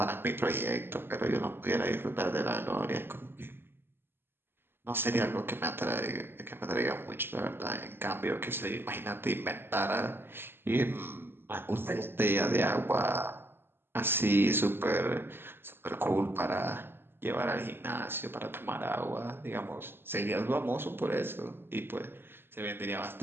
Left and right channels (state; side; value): late; left; 0.11 ms